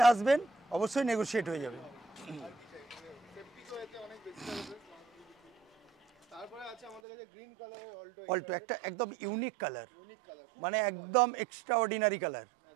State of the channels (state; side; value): drops out; left; at 7.0 s